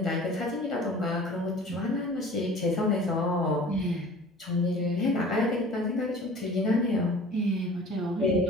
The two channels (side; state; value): both; normal; correlation 0.44